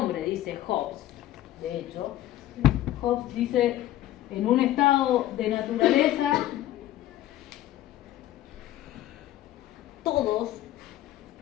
dice Hobbes. De hecho, Hobbes dice, en un estado de naturaleza, todos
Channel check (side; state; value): right; quieter; 14.0 dB